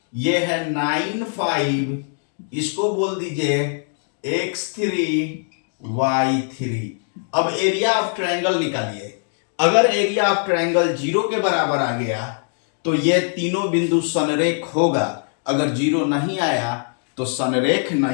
ये है 9 5, इसको बोल दीजिए x3 y3। अब एरिया ऑफ ट्रायंगल निकालिए। अगर एरिया ऑफ ट्रायंगल 0 के बराबर आ गया तो ये तीनों बिंदु संरेख होगा, अगर 0 नहीं आया तो संरेख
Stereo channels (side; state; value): right; silent; 57 dB below the other